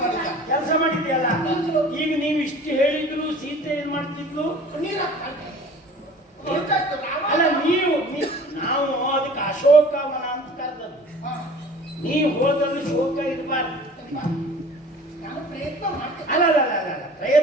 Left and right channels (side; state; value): both; normal; correlation 0.45